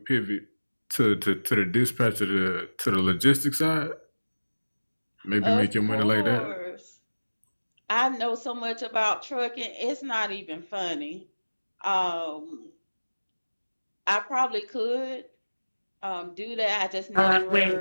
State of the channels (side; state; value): both; inverted; correlation -1.00